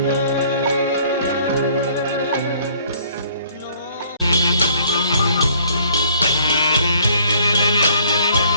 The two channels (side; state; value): both; inverted; correlation -0.59